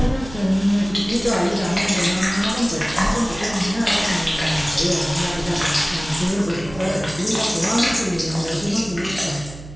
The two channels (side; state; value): right; noise; hum, 15 dB below the sound